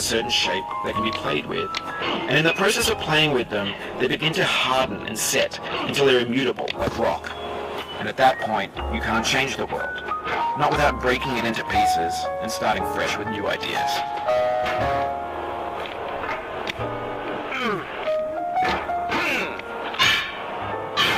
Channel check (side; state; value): both; identical; correlation 1.00